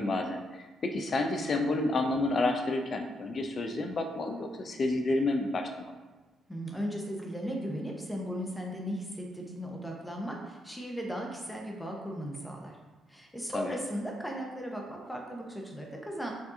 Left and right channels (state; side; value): normal; both; correlation 0.80